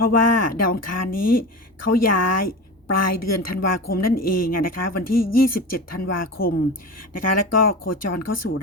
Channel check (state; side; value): normal; both; correlation 0.28